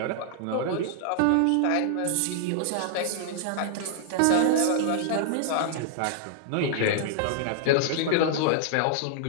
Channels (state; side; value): different; both; correlation -0.01